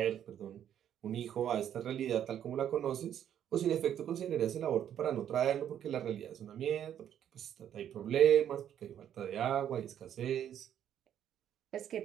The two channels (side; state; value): left; quieter; 10.0 dB